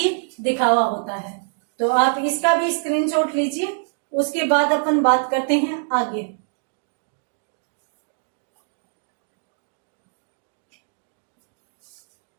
दिखावा होता है। तो आप इसका भी स्क्रीनशॉट लीजिए, उसके बाद अपन बात करते हैं आगे।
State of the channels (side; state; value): left; silent; digital silence